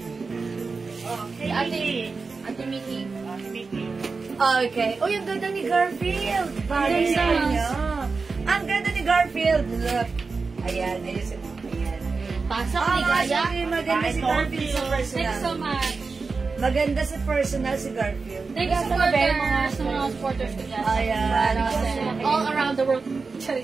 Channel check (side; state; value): left; quieter; 4.4 dB